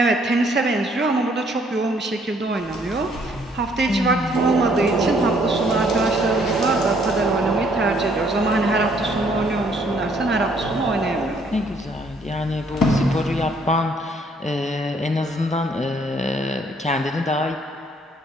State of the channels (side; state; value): both; normal; correlation 0.65